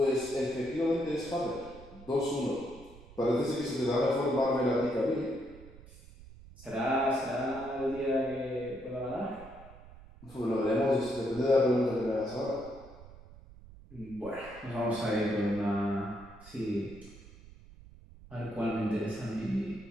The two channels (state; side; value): noise; right; rumble, 19 dB below the sound